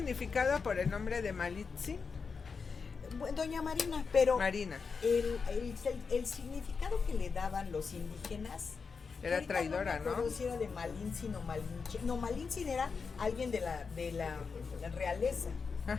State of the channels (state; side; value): quieter; right; 5.2 dB